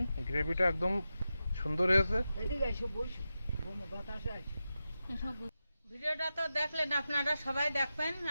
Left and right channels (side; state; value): both; inverted; correlation -0.91